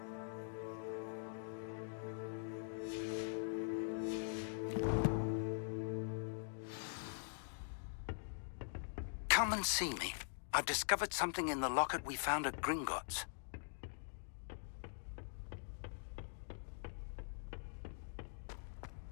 Come and see me. I've discovered something in the locket we found at Gringotts.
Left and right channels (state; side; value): silent; right; digital silence